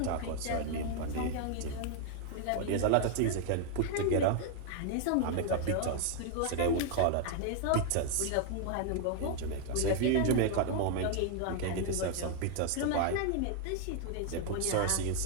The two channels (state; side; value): different; both; correlation 0.00